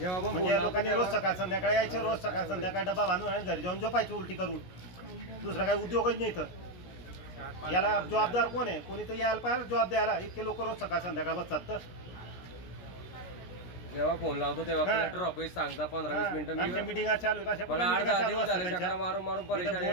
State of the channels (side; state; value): right; late; 16 ms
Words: लोकांनी रोज सकाळ संध्याकाळी यायचं, रोज सकाळ संध्याकाळी डबा बांधून आणि घरी जाऊन झोपायचं उलटी करून। दुसरा काही उद्योगच नाही तर याला जबाबदार कोण आहे? कोणी तर यायला पाहिजे जबाब द्यायला। इतके लोक रोज सकाळ संध्याकाळ बसतात तर जेव्हा फोन लावतो तेव्हा कलेक्टर ऑफिस सांगता 15-20 मिनिटं मीटिंग चालू आहे। मला 8-10 दिवस झाले चक्रा मारून परेशान।